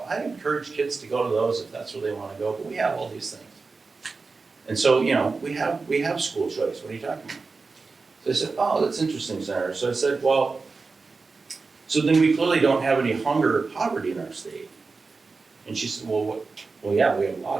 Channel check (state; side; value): quieter; left; 4.2 dB